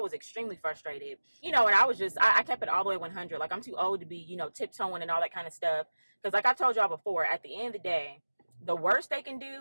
extremely frustrated, and I was just, I kept it all the way 100. Like I'm too old to be, tiptoeing and all that kind of stuff. Because like I told y'all before, at the end of the day, the worst they can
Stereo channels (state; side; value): inverted; both; correlation -1.00